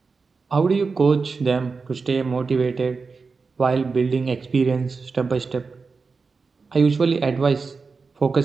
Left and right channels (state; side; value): quieter; left; 4.6 dB